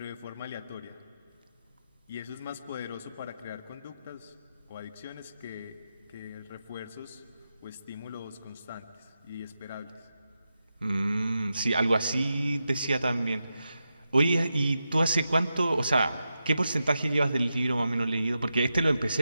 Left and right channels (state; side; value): inverted; both; correlation -0.89